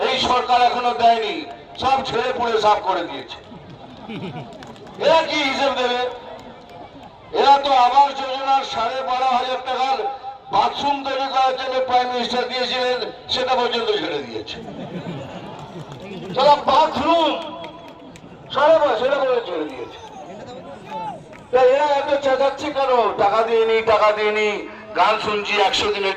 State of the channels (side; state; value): both; identical; correlation 1.00